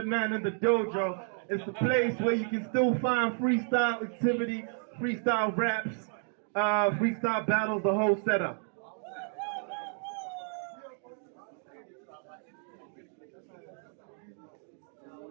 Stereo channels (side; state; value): left; silent; 57 dB below the other